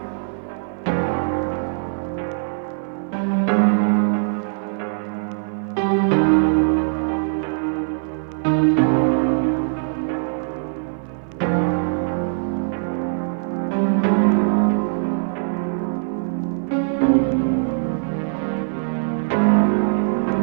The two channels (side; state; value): left; silent; 58 dB below the other